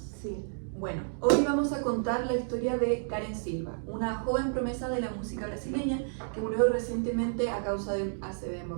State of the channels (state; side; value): silent; left; digital silence